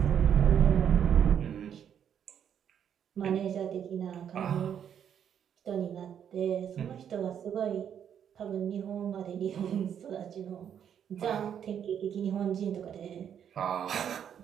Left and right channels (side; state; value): left; quieter; 8.8 dB